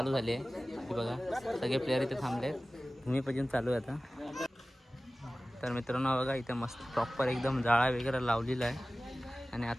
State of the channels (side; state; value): both; normal; correlation 0.97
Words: झाली आहे. हे बघा सगळे प्लेयर इथे थांबले, भूमिपूजन चालू आहे आता. तर मित्रांनो बघा इथे मस्त प्रॉपर एकदम जाळा वगैरे लावलेला आहे आणि